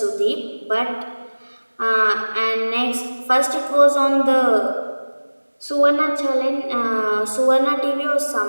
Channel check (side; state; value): both; inverted; correlation -1.00